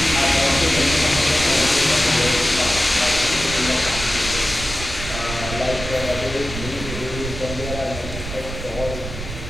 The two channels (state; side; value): noise; right; rumble, 9 dB below the sound